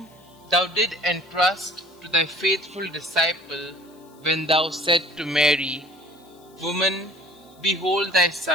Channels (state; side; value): noise; left; hiss, 29 dB below the sound